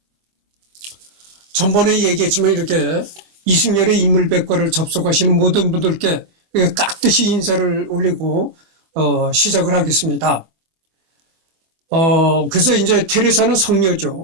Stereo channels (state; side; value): late; left; 24 ms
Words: 전번에 얘기했지만 이렇게 이승열의 인물백과를 접속하시는 모든 분들께 깍듯이 인사를 올리고 시작을 하겠습니다. 그래서 이제 테레사는